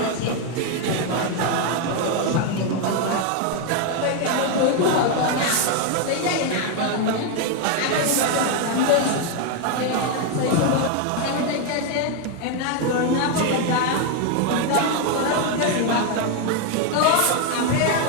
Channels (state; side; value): different; both; correlation 0.01